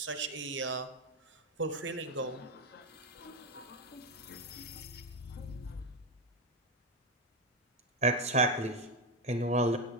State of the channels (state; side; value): normal; both; correlation 0.10